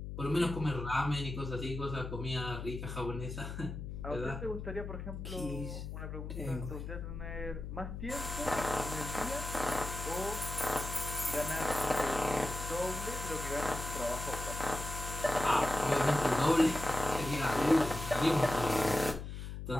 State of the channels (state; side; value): noise; left; hum, 7 dB below the sound